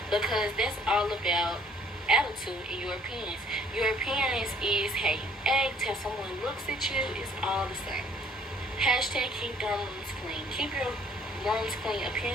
because that's all about attitude and your appearance. Your appearance is how you act, how someone looks at you. It's all the same. Hashtag keep dorm rooms clean. Keep your rooms clean.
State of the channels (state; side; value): normal; both; correlation 0.59